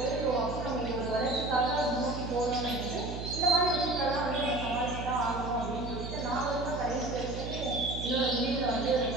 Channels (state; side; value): noise; right; hum, 7 dB below the sound